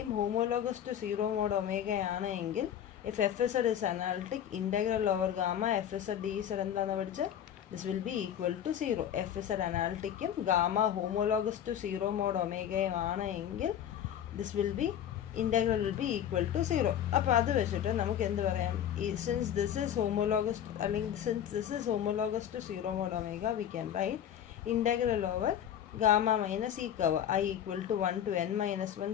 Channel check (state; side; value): quieter; right; 9.8 dB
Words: ഹോമോലോഗസ് ടു 0 മോഡ് ഒമേഗയാണ് എങ്കിൽ if FZ is analytic, integral over gamma FZ dz എന്താണെന്ന് പഠിച്ച് this will be equal to 0. FZ അനാലിറ്റിക്കും ഗാമ ഹോമോലോഗസ് ടു 0 മോഡ് ഒമേഗയും ആണ് എങ്കിൽ this will be integral will be equal to 0. അപ്പോൾ അത് വെച്ചിട്ട് നമുക്ക് എന്ത് പറയാം? since this is homologous to 0 mod omega, we can write integral over gamma minus e curve I equal to 1 to